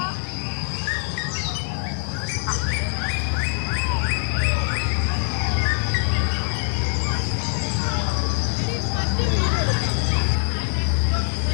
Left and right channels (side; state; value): right; silent; 61 dB below the other